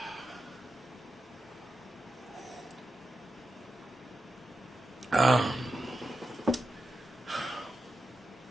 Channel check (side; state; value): both; normal; correlation 0.89